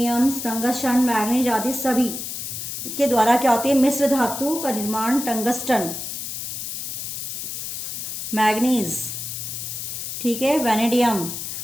टंगस्टन, मैग्नीज आदि सभी के द्वारा क्या होती है मिश्र धातु का निर्माण। टंगस्टन, मैग्नीज, ठीक है, वैनेडियम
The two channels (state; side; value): noise; left; hiss, 6 dB below the sound